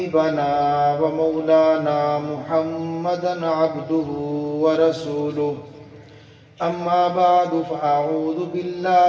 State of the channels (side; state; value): both; identical; correlation 1.00